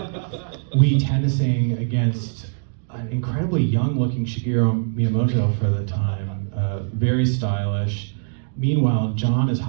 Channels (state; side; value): silent; left; digital silence